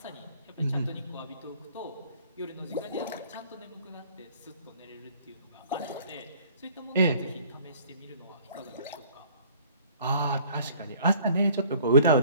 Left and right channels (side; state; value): both; inverted; correlation -0.54